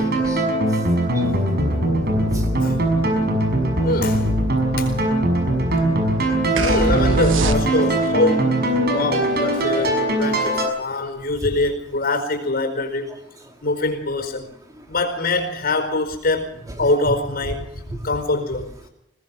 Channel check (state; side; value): normal; both; correlation 0.36